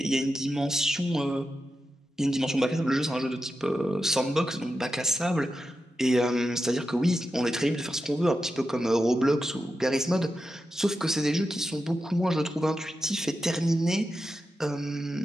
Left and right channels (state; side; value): normal; both; correlation 0.89